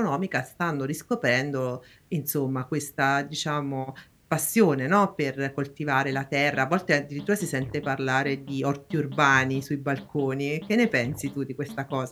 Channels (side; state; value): both; identical; correlation 1.00